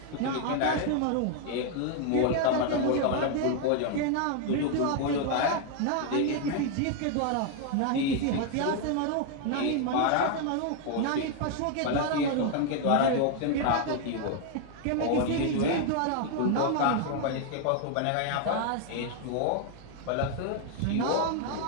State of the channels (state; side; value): different; both; correlation 0.00